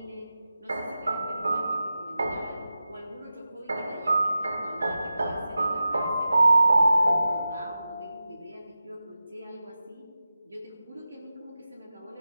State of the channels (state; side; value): inverted; both; correlation -0.93